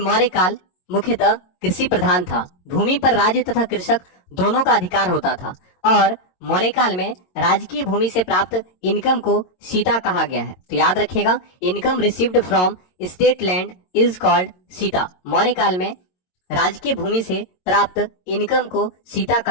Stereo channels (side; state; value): right; late; 22 ms